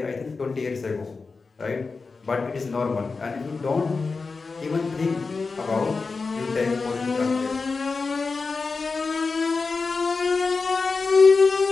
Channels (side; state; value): right; quieter; 4.3 dB